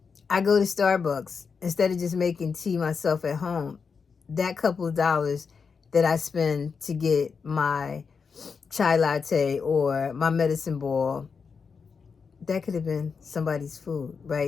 I go to Starbucks instead of just making tea myself at home. That couple of dollars that I spend to get my chai latte or my medicine ball, that could have been somebody's food,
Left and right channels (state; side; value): quieter; right; 5.6 dB